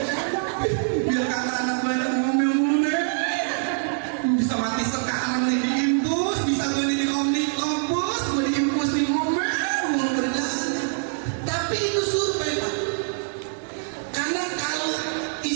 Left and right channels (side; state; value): left; silent; digital silence